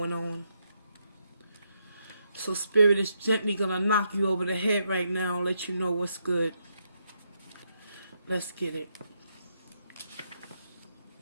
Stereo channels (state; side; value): inverted; both; correlation -0.79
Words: on. So Spirit is gently going to knock you over the head right now and let you know what's good. Let's get it.